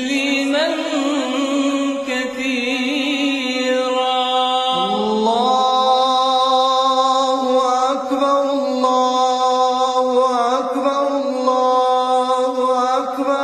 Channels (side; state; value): both; identical; correlation 1.00